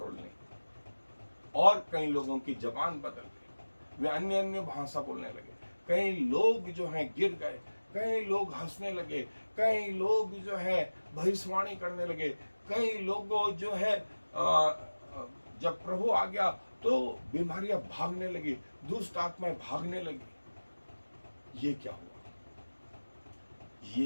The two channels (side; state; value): both; inverted; correlation -1.00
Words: नहीं। और कई लोगों की जबान बदल गई, वे अन्य अन्य भाषा बोलने लगे। कई लोग जो हैं गिर गए, कई लोग हंसने लगे, कई लोग जो है भविष्यवाणी करने लगे, कई लोगों जो है जब प्रभु आ गया तो बीमारियां भागने लगी, दुष्ट आत्माएं भागने लगी। ये क्या हुआ?